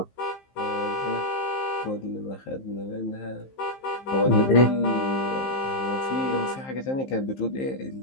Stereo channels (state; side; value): late; right; 15 ms